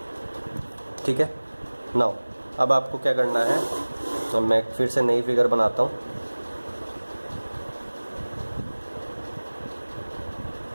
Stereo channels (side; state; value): both; inverted; correlation -1.00